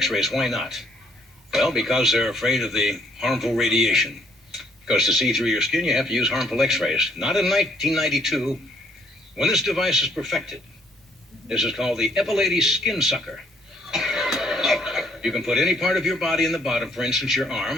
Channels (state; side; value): normal; both; correlation 0.66